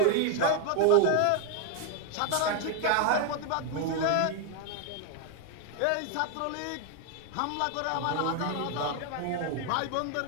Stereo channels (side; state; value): both; different; correlation 0.00